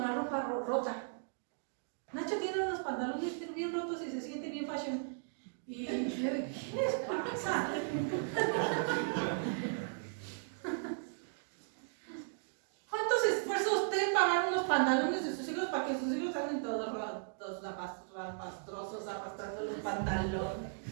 la ropa rota? Nacho tiene unos pantalones bien rotos y se siente bien fashion. Y ¿qué les pasa? ¿Cuántos esfuerzos usted pagar unos pantalones de sus hijos para que sus hijos salen todos rotos, rapastrosos, arrastrando los pantalones?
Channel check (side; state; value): left; silent; digital silence